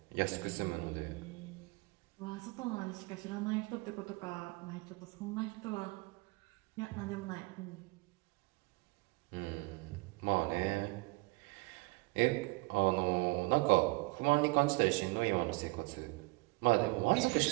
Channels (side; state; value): left; quieter; 25.8 dB